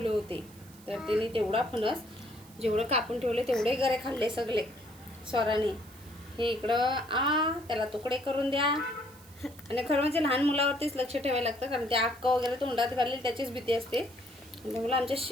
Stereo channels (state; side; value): noise; right; hiss, 23 dB below the sound